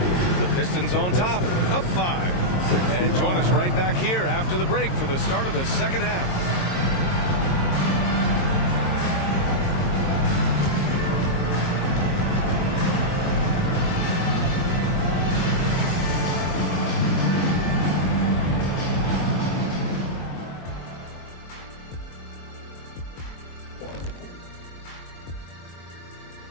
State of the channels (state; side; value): late; right; 22 ms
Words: Pistons on top, up 5. And join us right back here after the break for the start of the second half.